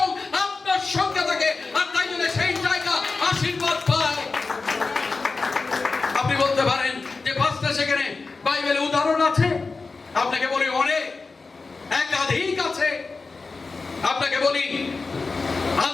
আপনার সঙ্গে থাকে। আর তাই জন্য সেই জায়গা আশীর্বাদ পায়। আপনি বলতে পারেন যে পাঁচটা সেখানে বাইবেলে উদাহরণ আছে। আপনাকে বলি অনেক, একাধিক আছে। আপনাকে বলি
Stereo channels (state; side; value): quieter; right; 4.1 dB